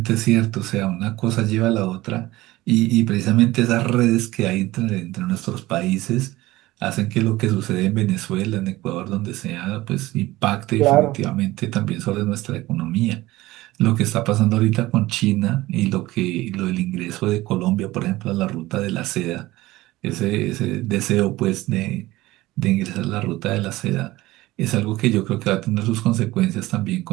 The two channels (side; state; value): left; quieter; 18.1 dB